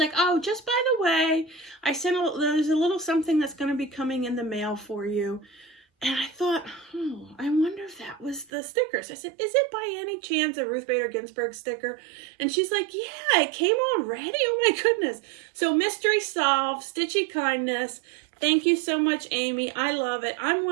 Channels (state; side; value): drops out; left; at 8.5 s